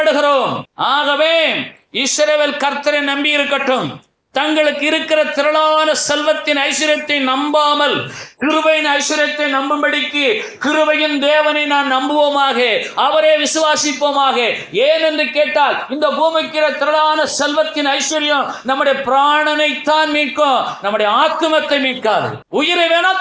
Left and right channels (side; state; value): both; identical; correlation 1.00